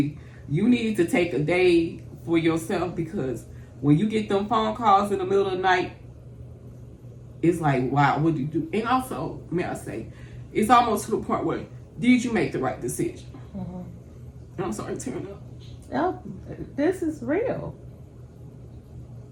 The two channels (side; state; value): both; identical; correlation 1.00